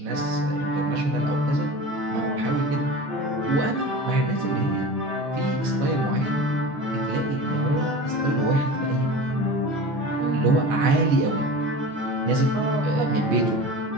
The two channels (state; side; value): late; left; 14 ms